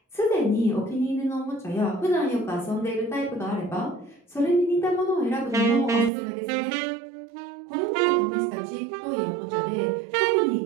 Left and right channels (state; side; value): drops out; left; at 6.1 s